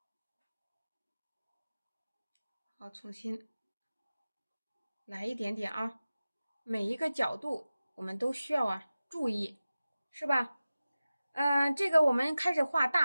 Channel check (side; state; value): both; inverted; correlation -0.96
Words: 好，重新来一点点啊，每一个角度我们都需要注意，是吧？这个我们开始画